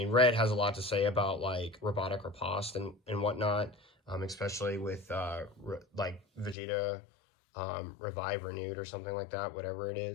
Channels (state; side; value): drops out; right; at 6.6 s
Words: red has a lot to say about like robotic riposte and whatnot, especially with like Vegeta Revive Renewed or something like that, whatever it